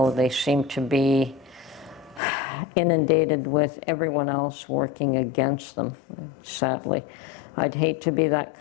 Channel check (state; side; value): drops out; right; at 2.2 s